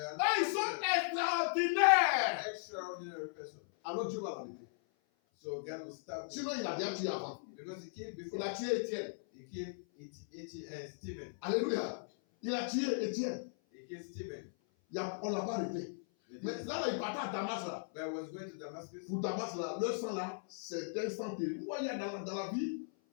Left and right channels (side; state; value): right; silent; 53 dB below the other